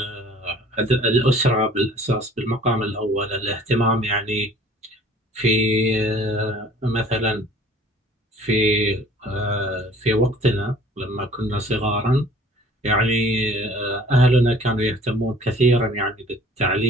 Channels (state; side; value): normal; both; correlation 0.51